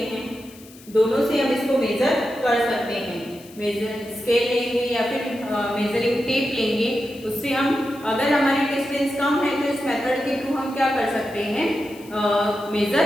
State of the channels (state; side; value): noise; left; hiss, 22 dB below the sound